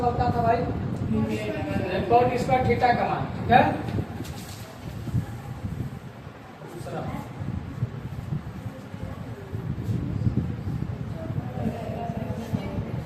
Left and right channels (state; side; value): identical; both; correlation 1.00